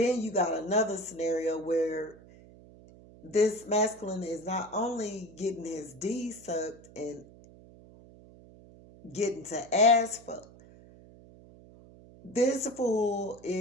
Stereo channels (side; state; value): right; noise; hum, 22 dB below the sound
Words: you got another scenario where this masculine is not only getting his D sucked and getting to ass fuck, this fool